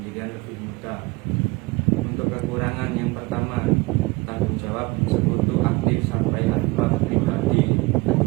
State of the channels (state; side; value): quieter; left; 23.5 dB